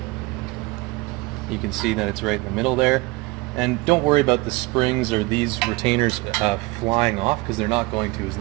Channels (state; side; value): quieter; left; 23.2 dB